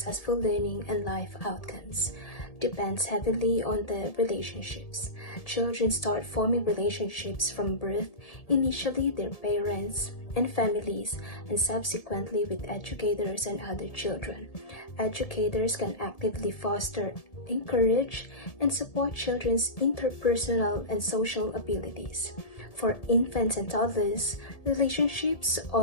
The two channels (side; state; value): right; late; 1.7 ms